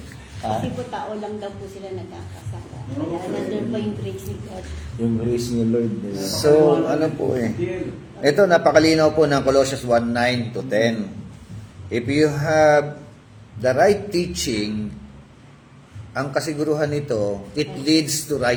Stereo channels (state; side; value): identical; both; correlation 1.00